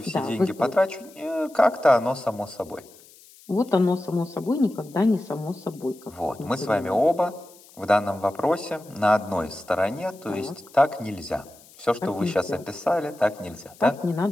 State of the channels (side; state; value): left; noise; hiss, 24 dB below the sound